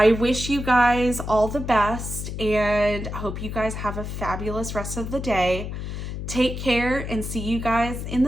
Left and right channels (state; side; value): noise; left; hum, 6 dB below the sound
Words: wish you guys all the best and hope you guys have a fabulous rest of the day. Take care and see you guys in